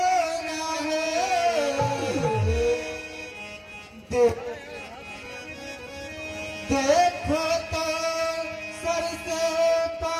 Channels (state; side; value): identical; both; correlation 1.00